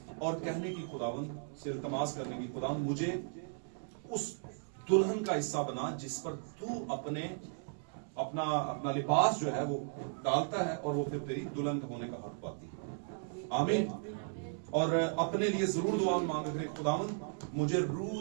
और कहने की, खुदावंद से इल्तमास करने की, खुदावंद मुझे उस दुल्हन का हिस्सा बना जिस पर तू अपना लिबास जो है वो डालता है और वो फिर तेरी दुल्हन होने का हक पाती है। आमीन। और अपने लिए जरूर दुआ मांग रहे, खुदावंद मुझे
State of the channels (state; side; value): silent; left; digital silence